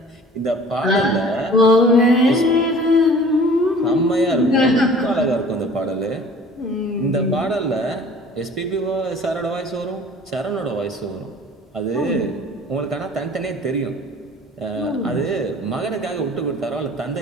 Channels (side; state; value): both; normal; correlation 0.47